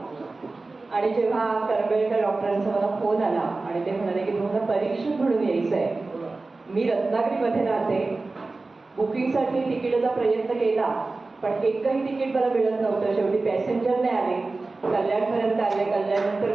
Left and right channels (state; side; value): quieter; left; 3.5 dB